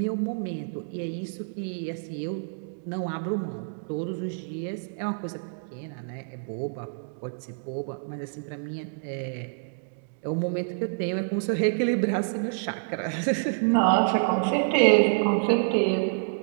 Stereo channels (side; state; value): left; silent; digital silence